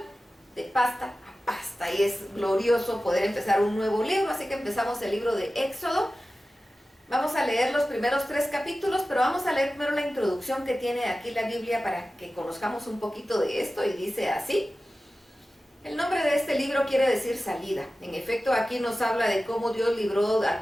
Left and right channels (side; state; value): both; normal; correlation 0.95